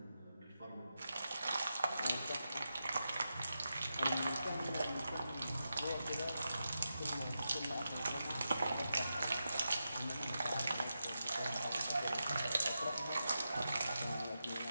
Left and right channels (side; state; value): both; inverted; correlation -0.88